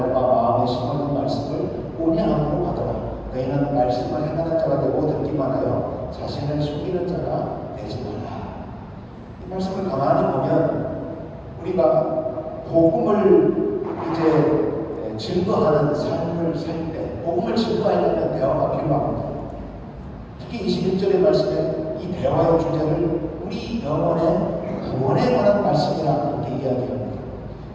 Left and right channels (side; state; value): both; identical; correlation 1.00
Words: 바 마음에 심어둔 말씀을 온유함으로 받아라. 너희는 말씀을 행하는 자가 되고 듣기만 하여 자신을 속이는 자가 되지 말라. 이 말씀을 가만히 보면 우리가 복음을 이제 증거하는 삶을 살 때, 복음을 증거하려면 대화가 필요합니다. 특히 21절의 말씀에 이 대화의 주제를 우리 영혼의 구원에 관한 말씀이라 이렇게 이야기합니다.